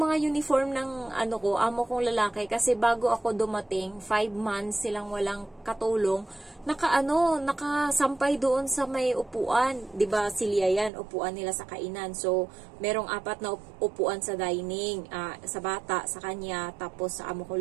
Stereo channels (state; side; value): drops out; left; at 10.9 s